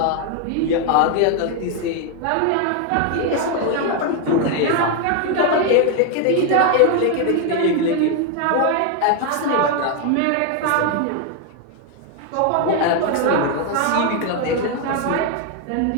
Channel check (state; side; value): different; both; correlation 0.01